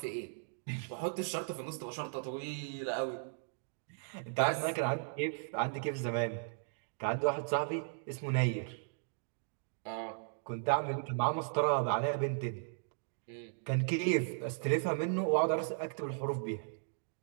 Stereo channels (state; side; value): silent; left; digital silence